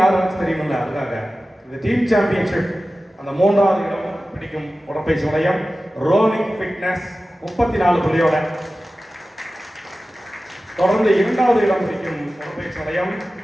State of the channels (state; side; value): normal; both; correlation 0.95